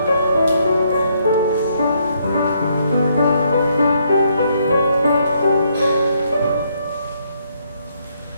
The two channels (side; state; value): both; inverted; correlation -0.72